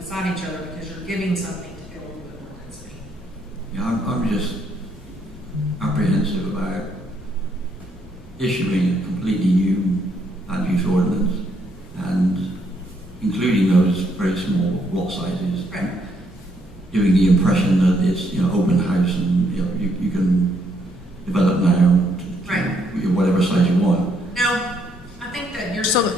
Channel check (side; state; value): both; normal; correlation 0.72